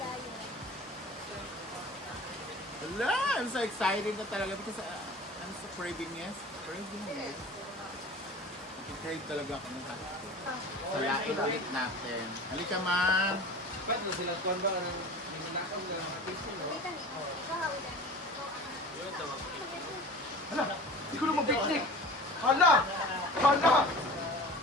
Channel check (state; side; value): normal; both; correlation 0.39